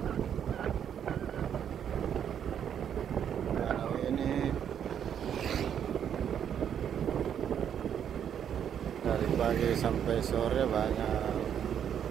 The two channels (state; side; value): quieter; left; 8.8 dB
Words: Dari pagi sampai sore banyak